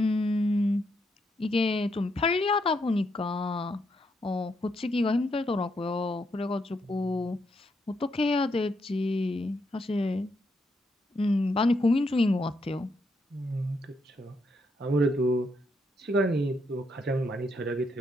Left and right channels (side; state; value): both; normal; correlation 0.78